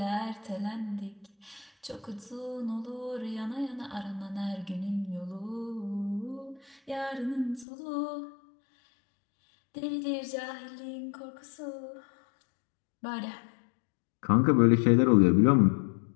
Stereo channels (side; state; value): right; drops out; at 7.7 s